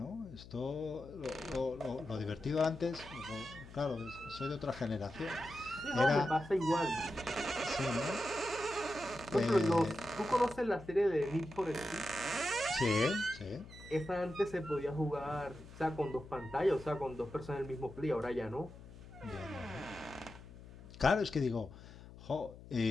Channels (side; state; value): left; noise; hum, 17 dB below the sound